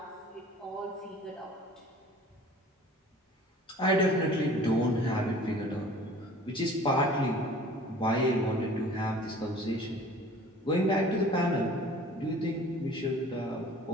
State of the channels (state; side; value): normal; both; correlation 0.47